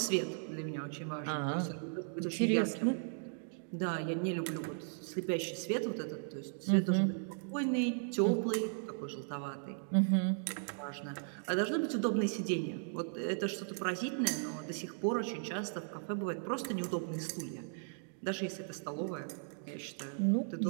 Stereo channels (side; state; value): left; silent; digital silence